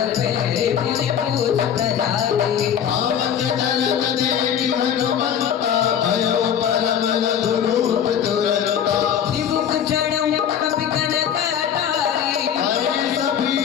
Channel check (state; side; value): quieter; right; 8.9 dB